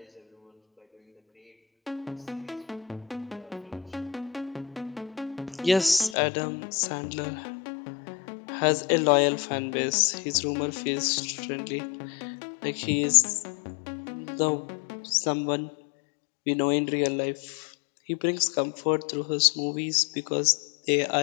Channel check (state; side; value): drops out; right; at 6.2 s